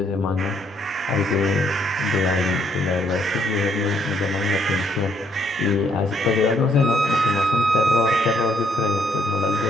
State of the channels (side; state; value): both; normal; correlation 0.70